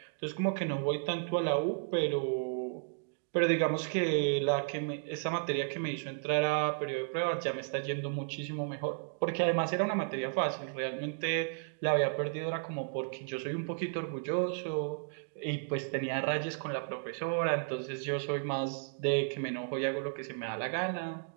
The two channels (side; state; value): left; silent; digital silence